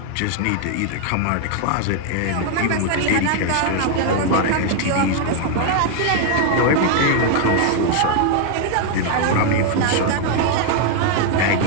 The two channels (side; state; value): both; different; correlation 0.00